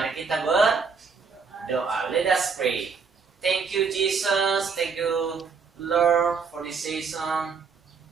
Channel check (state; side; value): quieter; left; 5.4 dB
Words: kita berdoa. Let us pray. Thank you, Jesus. Thank you, Lord, for this season.